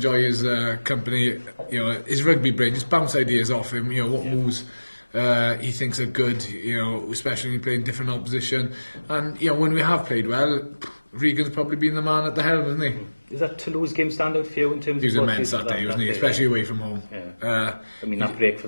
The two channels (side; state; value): both; inverted; correlation -1.00